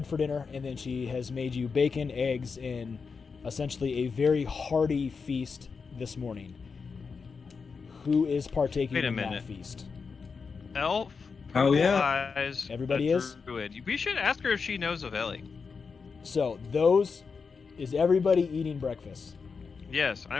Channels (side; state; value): right; quieter; 5.2 dB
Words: for dinner, and then she has made you bacon, eggs, and essentially a very hearty feast this morning. Who is partaking in that feast? Elf. Oh yeah. Eyes, Everybody is? Druid. We should ask her if she knows of Ellie. So is everybody eating breakfast? Yes,